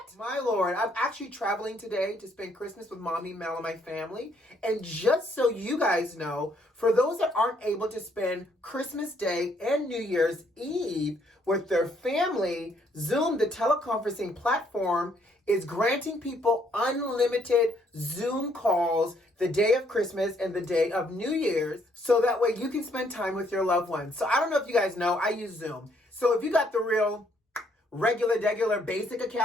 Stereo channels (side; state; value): both; normal; correlation 0.69